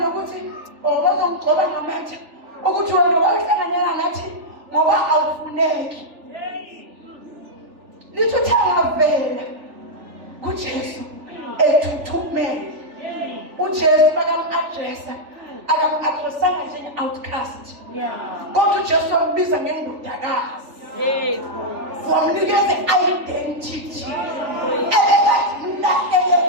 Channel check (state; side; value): late; left; 3.4 ms